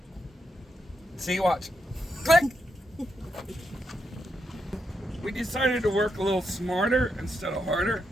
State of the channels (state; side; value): normal; both; correlation 0.83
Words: See, watch, click. We decided to work a little smarter instead of harder.